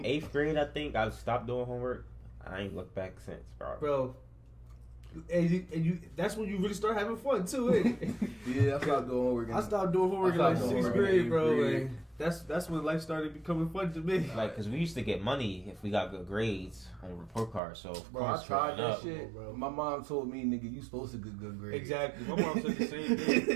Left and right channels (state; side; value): drops out; left; at 17.6 s